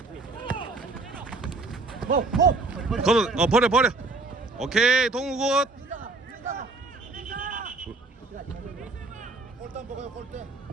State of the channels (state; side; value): quieter; left; 3.4 dB